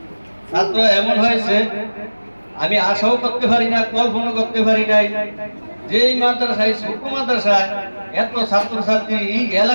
ছাত্র এমন হয়েছে আমি আশাও করতে পারি না, কল্পনা করতে পারি নাই যে এই মাদ্রাসায়, ছোট মাদ্রাসায় এত ছাত্রছাত্রী এই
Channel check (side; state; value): both; inverted; correlation -1.00